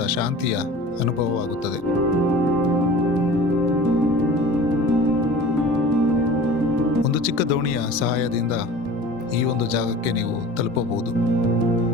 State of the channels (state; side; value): normal; both; correlation 0.40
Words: ಶಾಂತಿಯ ಅನುಭವವಾಗುತ್ತದೆ. ಒಂದು ಚಿಕ್ಕ ದೋಣಿಯ ಸಹಾಯದಿಂದ ಈ ಒಂದು ಜಾಗಕ್ಕೆ ನೀವು ತಲುಪಬಹುದು.